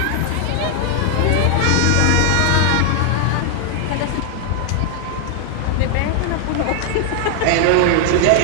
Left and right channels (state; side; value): different; both; correlation 0.00